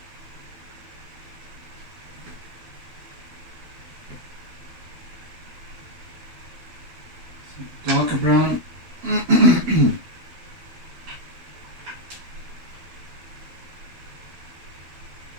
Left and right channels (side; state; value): left; late; 12 ms